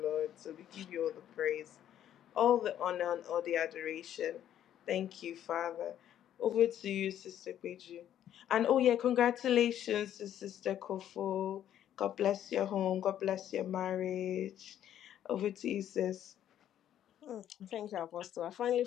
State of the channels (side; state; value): right; quieter; 10.9 dB